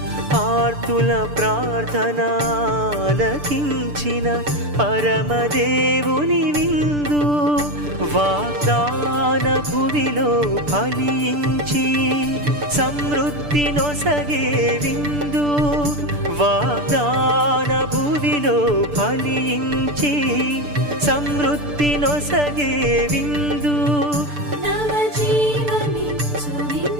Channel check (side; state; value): left; late; 6.8 ms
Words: ఆర్తుల ప్రార్థనాలకించిన పరమదేవుని విందు వాగ్దాన భువిలో ఫలించి సమృద్ధి నొసగే విందు వాగ్దాన భువిలో ఫలించి సమృద్ధి నొసగే విందు